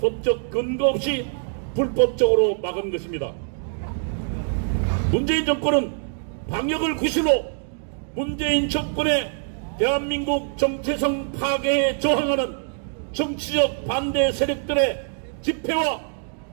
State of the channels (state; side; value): silent; left; 61 dB below the other